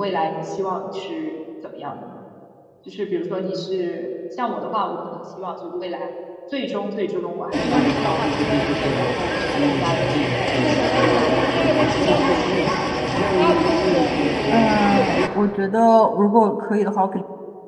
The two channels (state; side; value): identical; both; correlation 1.00